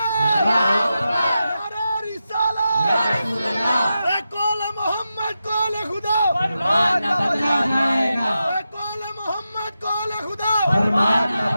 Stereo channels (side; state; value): both; inverted; correlation -0.90